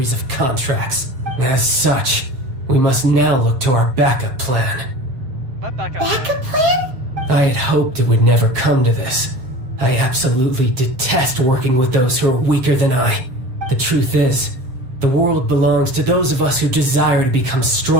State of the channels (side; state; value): left; late; 7.8 ms